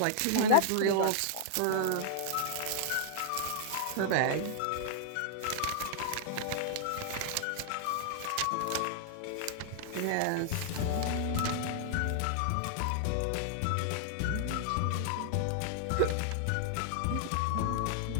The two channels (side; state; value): both; different; correlation 0.00